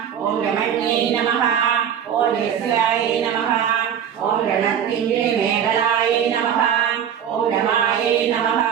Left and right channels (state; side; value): quieter; left; 8.8 dB